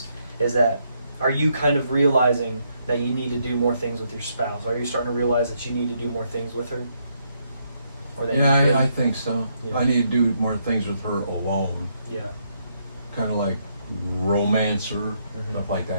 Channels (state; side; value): inverted; both; correlation -0.75